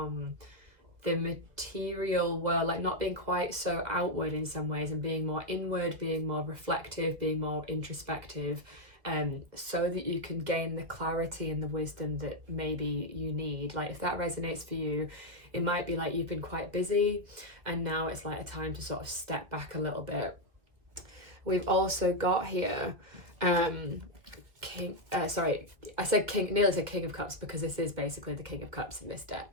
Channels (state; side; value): late; left; 1.8 ms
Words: the material world, like not being quite so outward in some ways and being more inward, being more reflective, being more introspective, so that you can gain the clarity and the wisdom that maybe you need. Like if that resonates for you, it might be like you've been quite busy and now it's like a time to sort of step back a little bit. We've also got here King, sorry, I said King, nearly said King of Cups, because this is basically the King of Cups in this